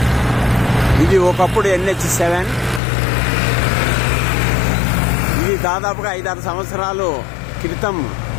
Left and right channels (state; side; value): drops out; right; at 2.8 s